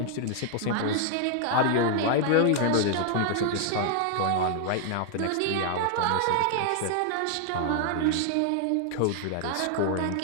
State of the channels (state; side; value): different; both; correlation 0.00